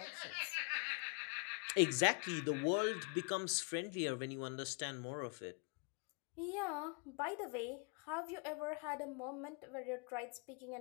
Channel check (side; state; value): right; quieter; 34.8 dB